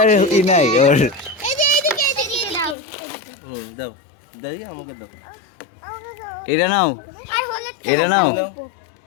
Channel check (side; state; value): right; drops out; at 2.8 s